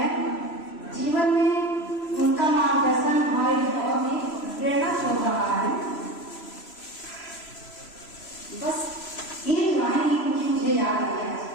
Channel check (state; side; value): late; right; 3.0 ms